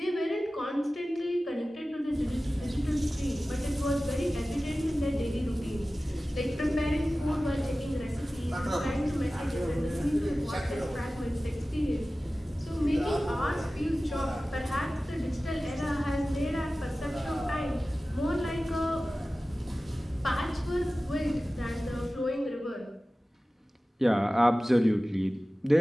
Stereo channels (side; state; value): both; normal; correlation 0.96